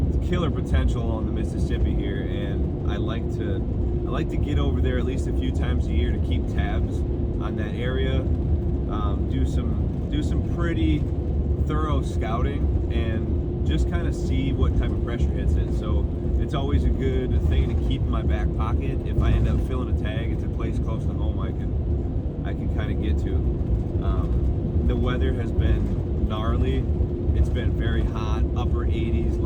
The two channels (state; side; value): identical; both; correlation 1.00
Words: It's killer potential on the Mississippi here, and I like to get over there at least a few times a year to keep tabs on that area. Do some pretty thorough scouting and just kind of see what type of pressure hits it. So it's always a good thing to keep in my back pocket. If I end up filling a tag, it's a place close to home I can kind of get to. The weather has been gnarly. It's been very hot, upper 80s,